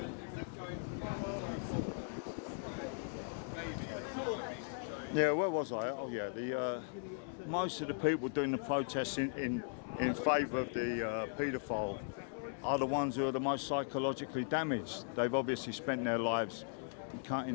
Yeah, where was I? Oh yeah, most of the people doing the protests in favour of the paedophile are the ones who are the most psychologically damaged. They've obviously spent their lives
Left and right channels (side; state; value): right; silent; digital silence